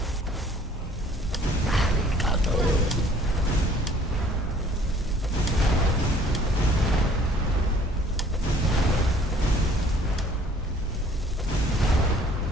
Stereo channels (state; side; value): normal; both; correlation 0.56